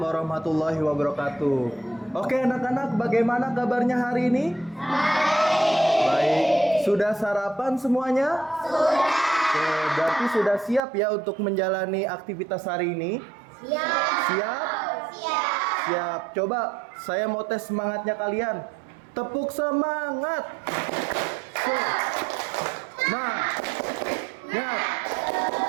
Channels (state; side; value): drops out; left; at 10.8 s